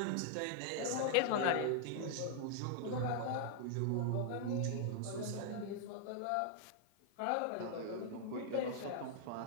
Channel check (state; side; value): different; both; correlation 0.00